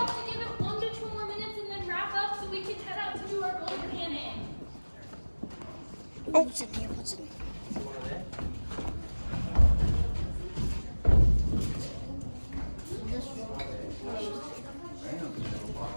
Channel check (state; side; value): inverted; both; correlation -1.00